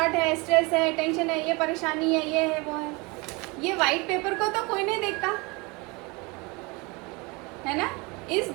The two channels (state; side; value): quieter; left; 26.9 dB